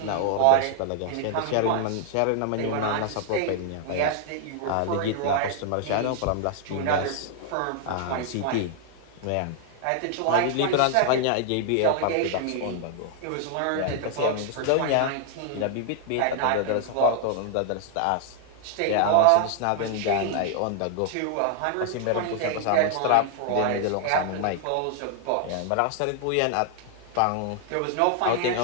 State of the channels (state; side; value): different; both; correlation 0.00